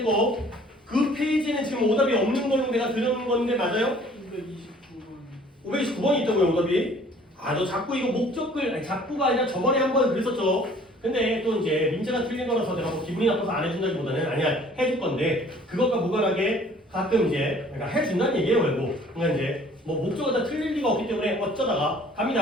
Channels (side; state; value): both; normal; correlation 0.54